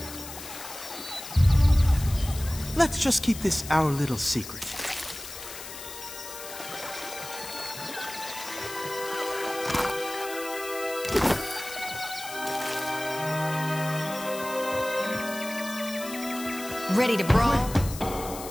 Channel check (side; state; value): left; noise; hiss, 11 dB below the sound